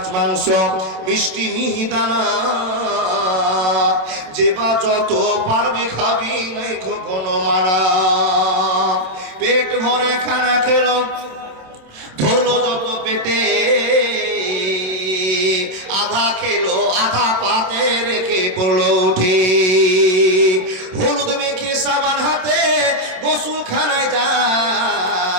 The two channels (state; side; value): late; left; 27 ms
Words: মাংস মিষ্টি মিহিদানা, যে বা যত পারবি খাবি, নাই কোনো মানা। পেট ভরে খানা খেলো, ধরলো যত পেটে, আধা খেলো আধা পাতে রেখে পড়লো উঠে। হলুদ মেখে সাবান হাতে গোসল খানায়